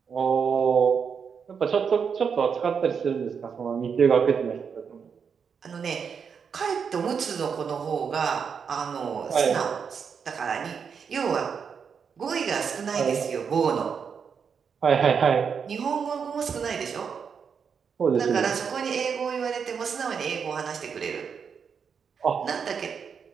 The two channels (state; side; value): quieter; left; 6.5 dB